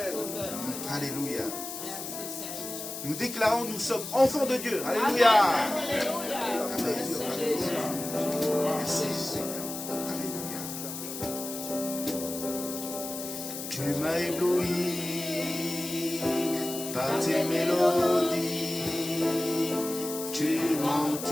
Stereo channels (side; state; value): left; noise; hiss, 8 dB below the sound